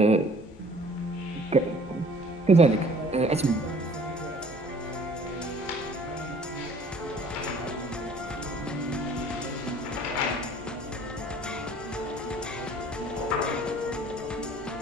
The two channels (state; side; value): normal; both; correlation 0.53